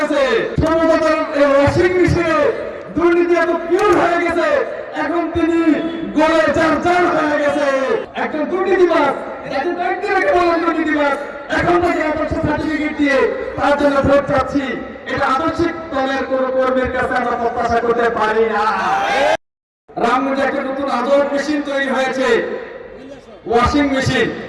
সমতার ওয়াশিং মেশিনে দুর্নীতি এত পিওর হয়ে গেছে, এখন তিনি গলে চার হয়ে গেছে। একজন দুর্নীতিবাজ, যাকে ব্যক্তিকে বলেন দুর্নীতিবাজ, এখন তাকে আদর্শ সার্টিফিকেট দিয়ে তার জন্য ভোট চাচ্ছি। এটা আদর্শিক দলের কোন কর্মীর কাছে আমরা প্রত্যাশা করতে পারি না। রামগঞ্জে একটা নতুন আদর মেশিন তৈরি হয়েছে, ওয়াশিং মেশিন,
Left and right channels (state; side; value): identical; both; correlation 1.00